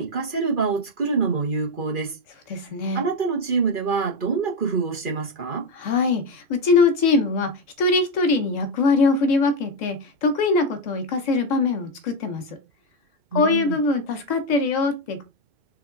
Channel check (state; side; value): late; left; 2.4 ms